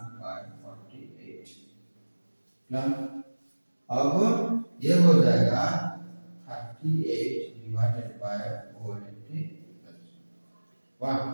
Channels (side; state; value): both; inverted; correlation -1.00